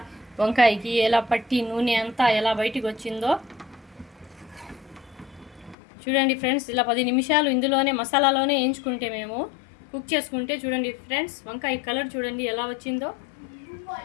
వంకాయకి ఎలా పట్టి నూనె అంతా ఎలా బయటికి వచ్చిందో చూడండి ఫ్రెండ్స్. ఇలా 10 నిమిషాలు ఇందులోనే మసాలాలోనే వేయించుకుంటే మేము కుక్ చేసుకుంటే చూడండి ఫ్రెండ్స్, వంకాయ కలర్ చూడండి ఎలా వచ్చిందో.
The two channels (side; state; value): right; drops out; at 5.8 s